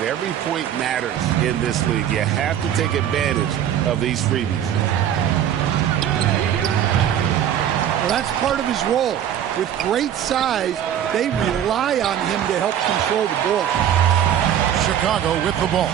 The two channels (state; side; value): quieter; left; 10.1 dB